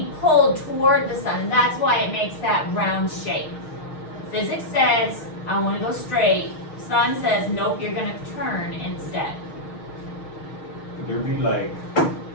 pulled toward the sun. And that's why it makes that round shape. Physics says, I want to go straight. Sun says, nope, you're going to turn instead. Could there be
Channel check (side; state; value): right; late; 6.5 ms